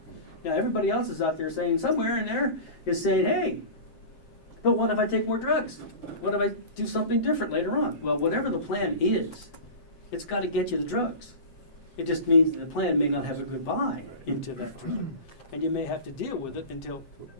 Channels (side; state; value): right; late; 7.5 ms